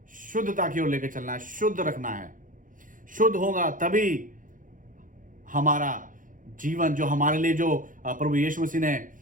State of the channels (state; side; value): late; left; 0.39 ms